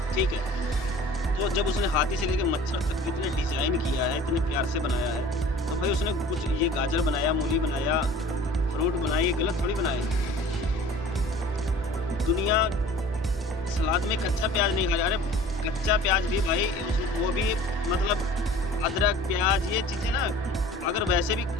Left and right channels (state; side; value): normal; both; correlation 0.46